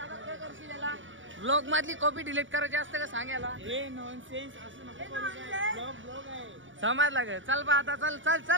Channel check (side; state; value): left; late; 0.56 ms